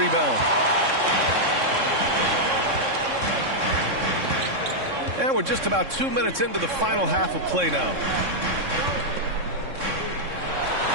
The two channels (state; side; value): late; left; 3.6 ms